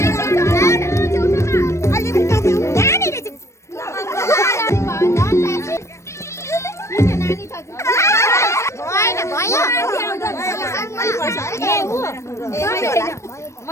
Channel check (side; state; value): right; late; 0.13 ms